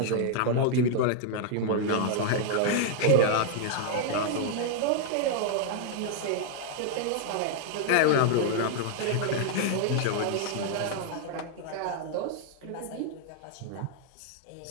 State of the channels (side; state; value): both; different; correlation 0.00